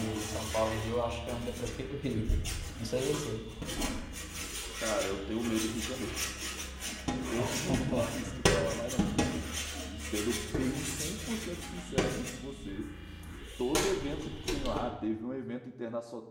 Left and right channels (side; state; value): both; identical; correlation 1.00